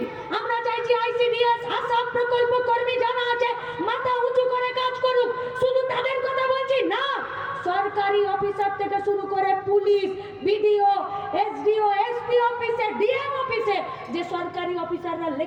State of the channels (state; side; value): identical; both; correlation 1.00